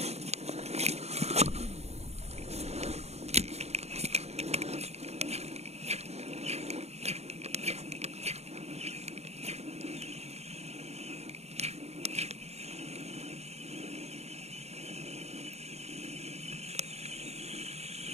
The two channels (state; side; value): late; left; 0.31 ms